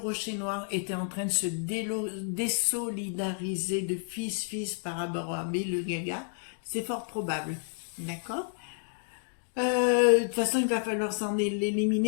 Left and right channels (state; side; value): silent; right; 58 dB below the other